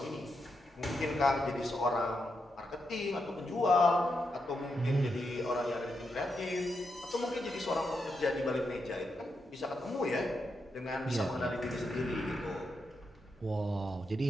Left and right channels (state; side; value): normal; both; correlation 0.84